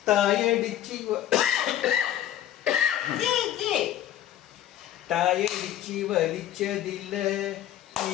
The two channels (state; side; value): quieter; right; 12.0 dB